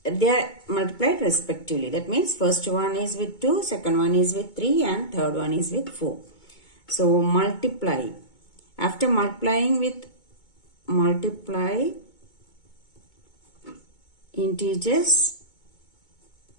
they are multiplied respectively. That means first one is with 2, second one is with 3 and third one is with 4. So multiply. After multiplying with multiply integers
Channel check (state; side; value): late; right; 2.2 ms